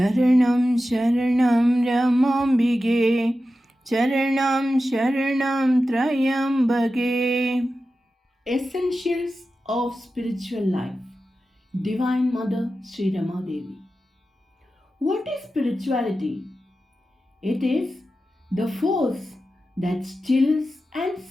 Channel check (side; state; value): both; normal; correlation 0.93